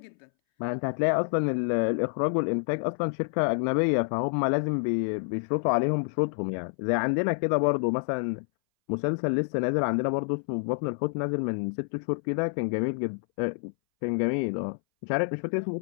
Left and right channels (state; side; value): silent; right; 60 dB below the other